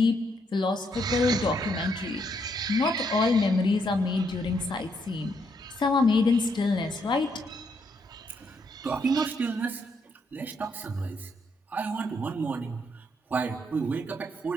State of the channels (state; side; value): normal; both; correlation 0.75